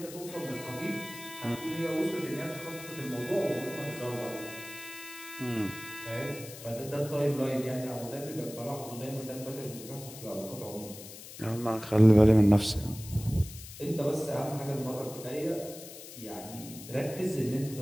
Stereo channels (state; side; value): noise; left; hiss, 14 dB below the sound